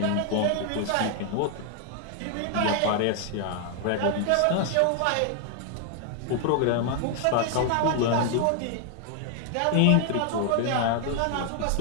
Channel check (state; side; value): different; both; correlation 0.00